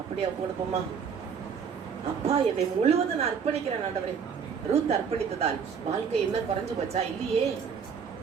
அப்படியே கொடுப்போமா? அப்பா, என்னை முழுவதும் நான் அர்ப்பணிக்கிறேன் ஆண்டவரே. ரூத் அர்ப்பணித்ததால் வாழ்க்கை என்ன குறைஞ்சு போச்சா? இல்லையே.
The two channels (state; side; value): quieter; left; 6.7 dB